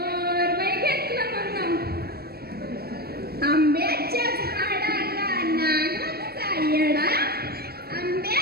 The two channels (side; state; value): left; late; 0.46 ms